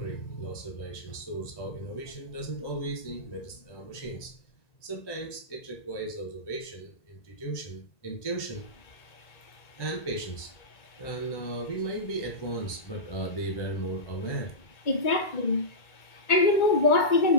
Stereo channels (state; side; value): late; right; 1.9 ms